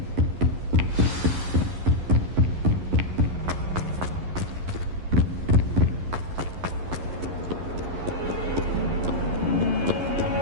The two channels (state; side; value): late; left; 11 ms